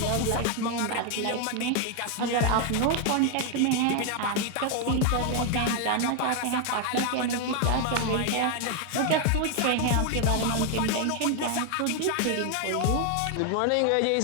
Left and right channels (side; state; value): both; different; correlation 0.01